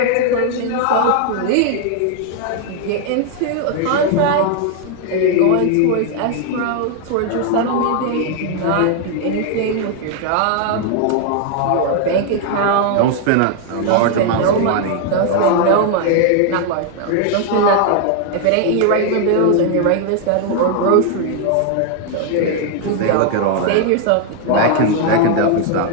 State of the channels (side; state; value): both; different; correlation 0.00